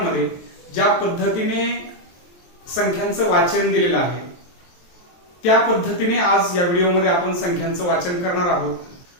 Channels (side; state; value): right; late; 23 ms